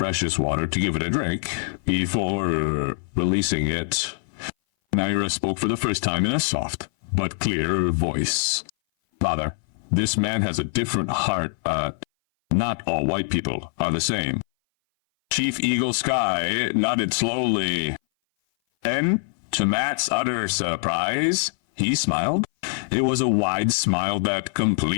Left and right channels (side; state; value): right; silent; 59 dB below the other